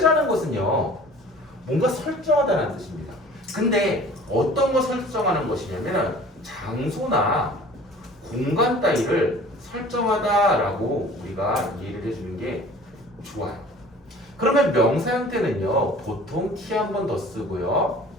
것은요 뭔가 설정하다는 뜻입니다. 근데 어떤 거 설정하는 것이냐면 장소나 공간 따위를 설정하다라고 우리가 이해를 해주는 게 좋아요. 그러면 명사 형태는요 보통 t 한 번 더 쓰고요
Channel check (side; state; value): both; normal; correlation 0.46